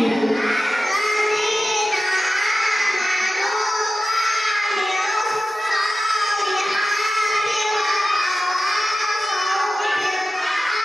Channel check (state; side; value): normal; both; correlation 0.94